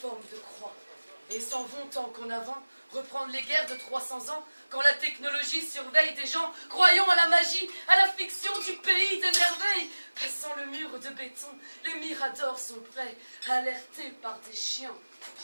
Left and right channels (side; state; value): both; inverted; correlation -1.00